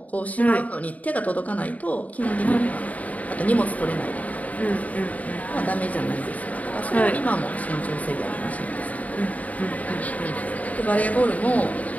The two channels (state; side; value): late; right; 0.071 ms